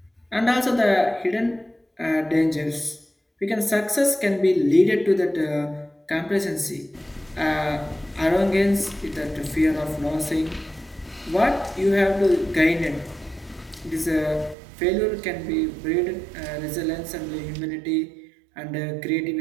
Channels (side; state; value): left; drops out; at 14.6 s